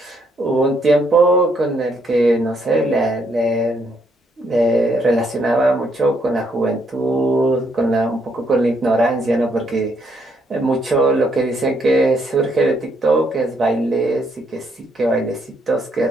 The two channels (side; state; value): both; normal; correlation 0.73